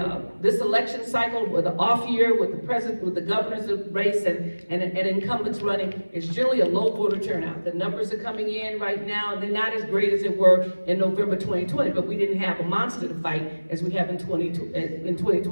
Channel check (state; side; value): inverted; both; correlation -1.00